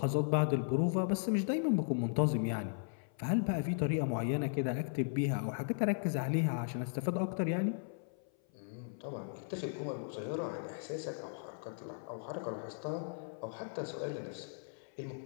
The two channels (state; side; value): silent; right; 53 dB below the other